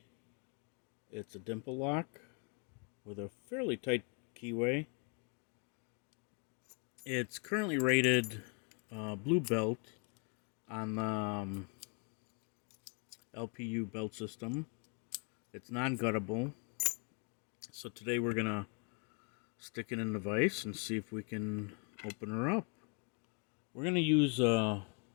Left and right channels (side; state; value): right; quieter; 39.0 dB